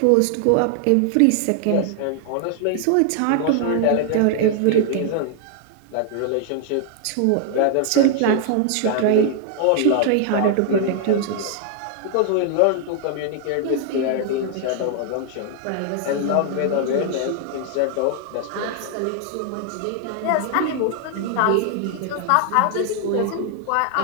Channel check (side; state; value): both; different; correlation 0.00